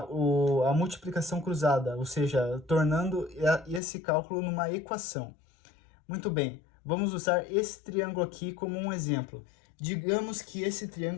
multiplicação cruzada, ou seja, tornando esse cálculo numa equação. Muito bem, vamos usar esse triângulo aqui como um exemplo. Digamos que esse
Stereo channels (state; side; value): drops out; right; at 3.8 s